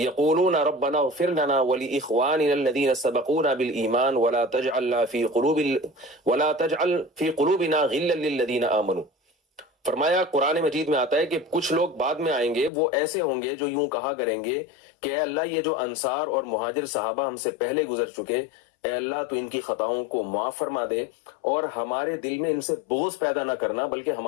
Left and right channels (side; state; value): right; drops out; at 12.7 s